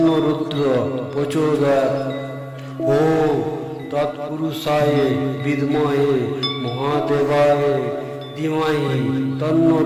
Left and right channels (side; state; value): both; identical; correlation 1.00